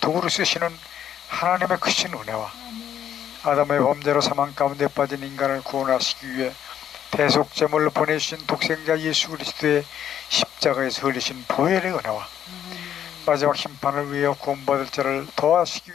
쓰시는 하나님의 크신 은혜와 아담의 범죄로 사망 가운데 빠진 인간을 구원하시기 위해 대속제물로 보내주신 독생자 예수 그리스도의 십자가에서 흘리신 보혈의 은혜와 마지막 심판을 위해 구원받을 자를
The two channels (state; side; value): quieter; right; 9.9 dB